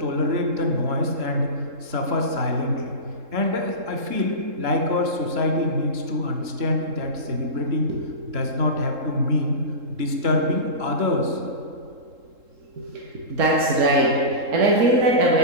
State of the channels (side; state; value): left; late; 3.7 ms